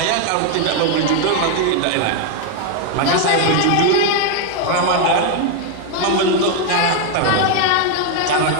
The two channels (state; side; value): different; both; correlation 0.01